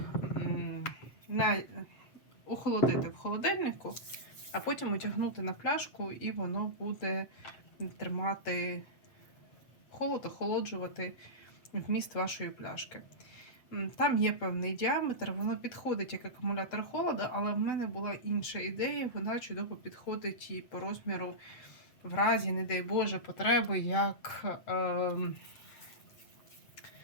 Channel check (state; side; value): late; right; 7.9 ms